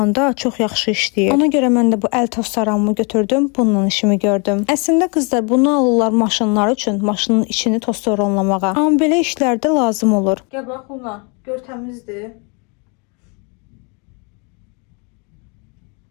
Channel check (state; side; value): quieter; right; 33.9 dB